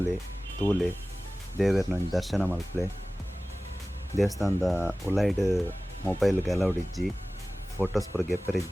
ತೂಲೆ ದೇವೇರ್ನ ದರ್ಶನ ಮಲ್ಪಲೆ. ದೇವಸ್ಥಾನದ ಉಲೈಡ್ ಮೊಬೈಲ್ಗೆ ಅಲೌಡ್ ಇಜ್ಜಿ, ಫೋಟೋಸ್ ಪೂರ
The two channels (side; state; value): both; normal; correlation 0.97